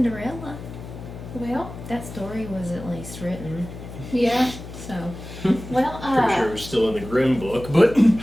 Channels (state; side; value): noise; left; hum, 12 dB below the sound